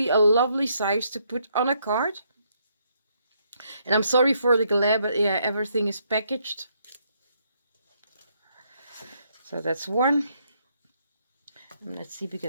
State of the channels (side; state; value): both; inverted; correlation -0.73